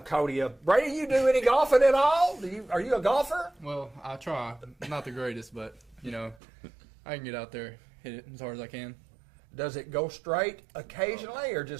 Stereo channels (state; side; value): drops out; left; at 6.4 s